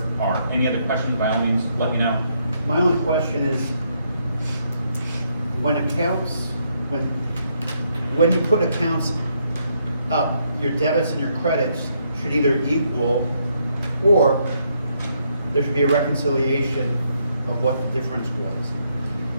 are any other questions, by all means, let me know. My only question is, when you put accounts up, your debits and your credits should either equal, or there should be a reconciliation of what the difference was.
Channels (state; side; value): inverted; both; correlation -0.75